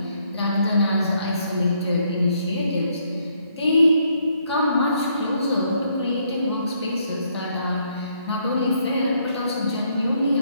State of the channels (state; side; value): inverted; both; correlation -0.71